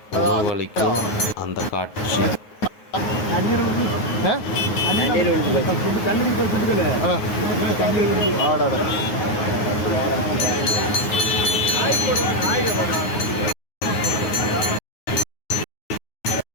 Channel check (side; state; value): right; late; 9.5 ms